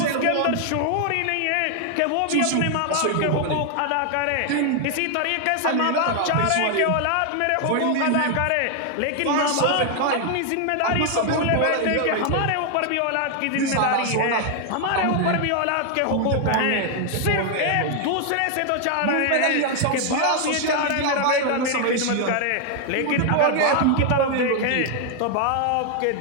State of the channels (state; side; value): different; both; correlation 0.00